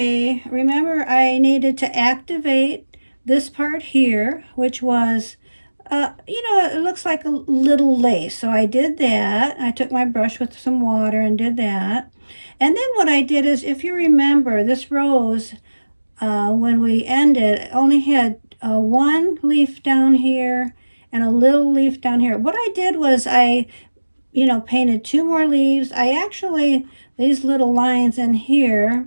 remember I needed to activate this part here, which was it looks like a little lace. So I did that. I took my brush with some water and did that. And then what I did is, if you remember, this rose, when we ended, only had one leaf down here and a little leaf down here. What I did was painted two more leaves. These little lines in here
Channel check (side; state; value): both; inverted; correlation -1.00